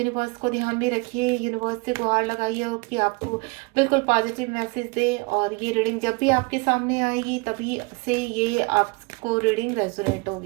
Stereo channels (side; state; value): left; quieter; 28.1 dB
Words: को ध्यान में रखिए, यूनिवर्स से गुहार लगाइए कि आपको बिल्कुल पॉजिटिव मैसेज दे। और ये रीडिंग जब भी आपके सामने आएगी तभी से ये आपको रीडिंग रेजोनेट